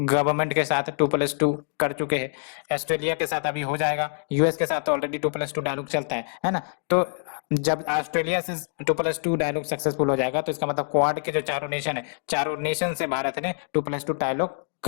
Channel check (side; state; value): right; silent; digital silence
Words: के साथ 2+2 कर चुके हैं, ऑस्ट्रेलिया के साथ अभी हो जाएगा, US के साथ ऑलरेडी 2+2 डायलॉग चलता है ना। तो जब ऑस्ट्रेलिया से 2+2 डायलॉग सक्सेसफुल हो जाएगा तो इसका मतलब क्वाड के जो चारों नेशन है, चारों नेशन से भारत ने 2+2 डायलॉग